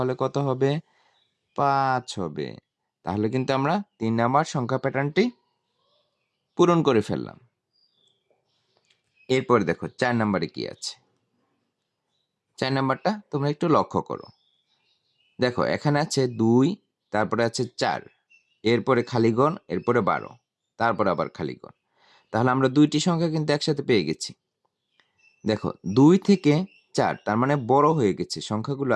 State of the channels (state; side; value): identical; both; correlation 1.00